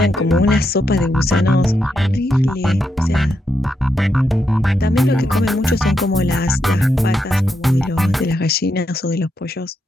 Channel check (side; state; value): both; normal; correlation 0.82